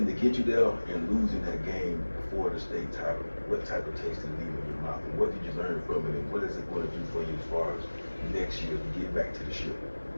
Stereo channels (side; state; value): both; inverted; correlation -1.00